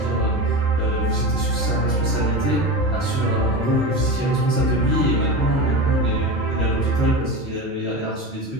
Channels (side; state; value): both; normal; correlation 0.25